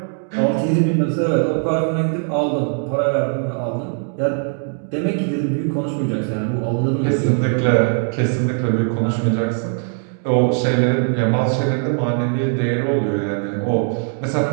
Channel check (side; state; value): left; silent; 57 dB below the other